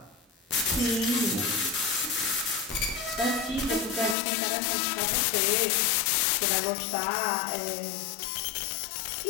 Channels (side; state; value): right; drops out; at 4.2 s